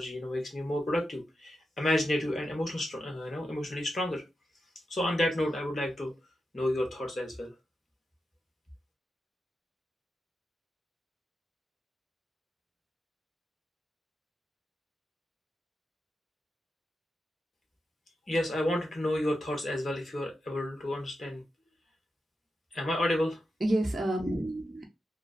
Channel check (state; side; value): normal; both; correlation 0.89